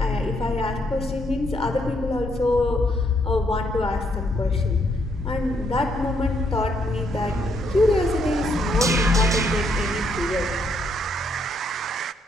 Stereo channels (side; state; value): both; normal; correlation 0.73